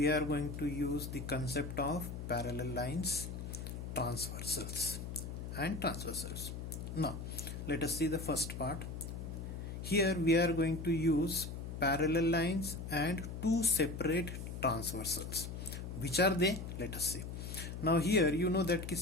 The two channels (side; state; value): left; noise; hum, 7 dB below the sound